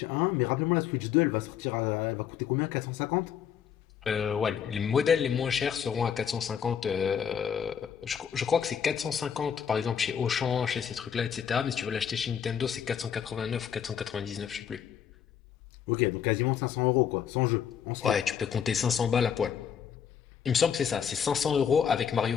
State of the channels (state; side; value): quieter; right; 8.1 dB